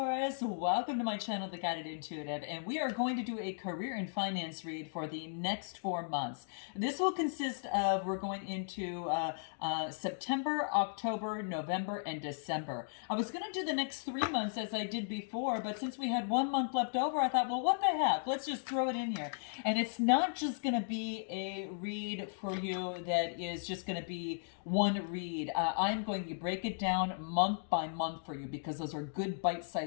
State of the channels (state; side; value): silent; right; digital silence